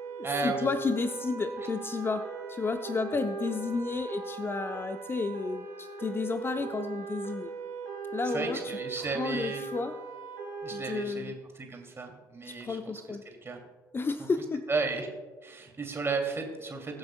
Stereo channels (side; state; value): both; normal; correlation 0.68